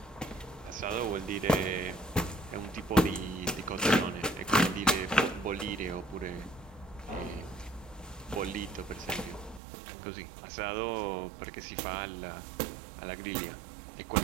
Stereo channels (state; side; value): drops out; left; at 9.6 s